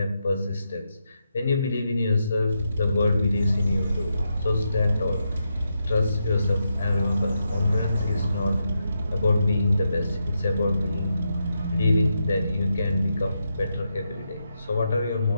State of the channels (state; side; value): inverted; both; correlation -0.84